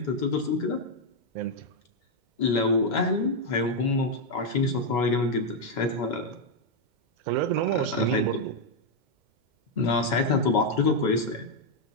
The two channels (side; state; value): left; late; 2.1 ms